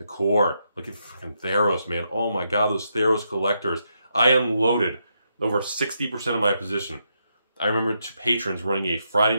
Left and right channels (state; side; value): inverted; both; correlation -0.81